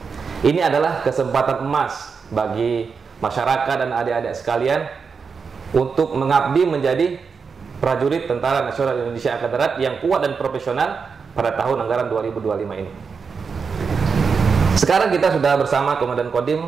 Ini adalah kesempatan emas bagi masyarakat dan adik-adik sekalian untuk mengabdi menjadi prajurit Tentara Nasional Indonesia Angkatan Darat yang kuat dan profesional pada tahun anggaran 2025 ini. Sekarang kita sudah bersama Komandan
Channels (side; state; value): left; quieter; 5.6 dB